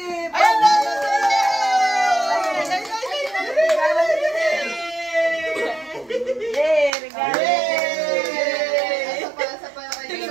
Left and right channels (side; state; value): left; drops out; at 6.9 s